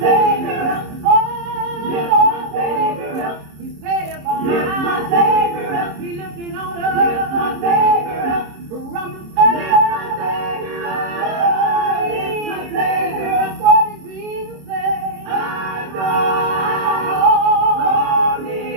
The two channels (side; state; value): left; late; 26 ms